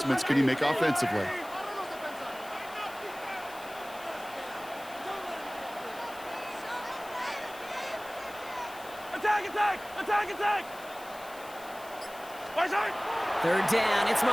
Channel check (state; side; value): noise; left; hiss, 19 dB below the sound